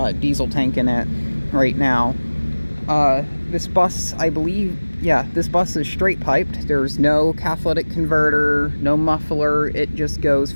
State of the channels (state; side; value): inverted; both; correlation -1.00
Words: diesel tank in it right now. This bus, I believe, this bus is straight piped. There's no catalytic converter, no muffler. It just goes